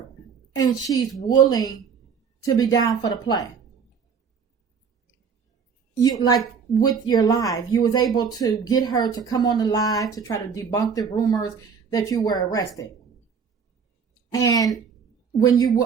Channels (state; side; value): quieter; left; 6.3 dB